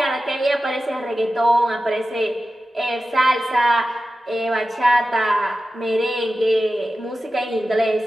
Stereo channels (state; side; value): normal; both; correlation 0.93